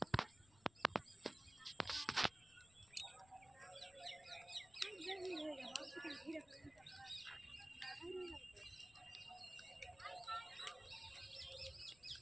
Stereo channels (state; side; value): noise; left; rumble, 25 dB below the sound